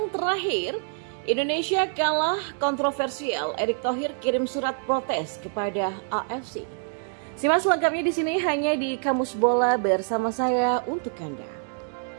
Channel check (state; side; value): silent; left; 55 dB below the other